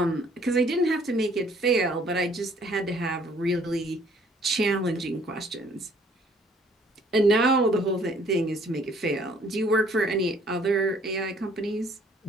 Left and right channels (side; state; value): both; normal; correlation 0.60